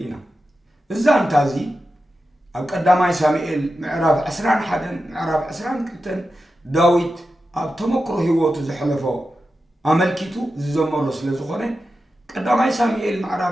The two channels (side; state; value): both; normal; correlation 0.91